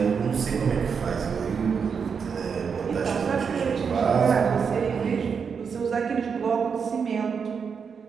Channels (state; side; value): quieter; left; 6.2 dB